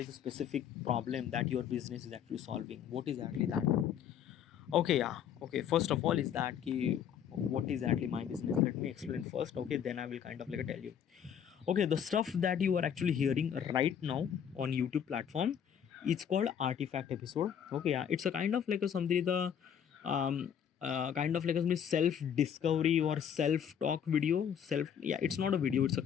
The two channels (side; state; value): right; quieter; 8.6 dB